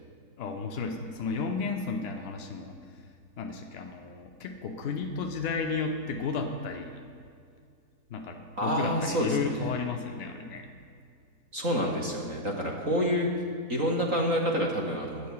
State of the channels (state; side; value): late; left; 3.9 ms